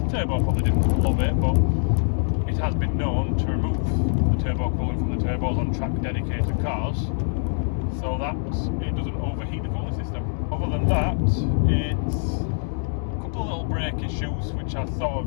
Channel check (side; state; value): right; silent; 62 dB below the other